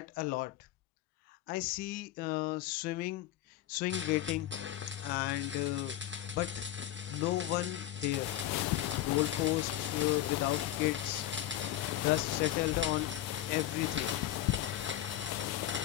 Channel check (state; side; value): quieter; right; 13.3 dB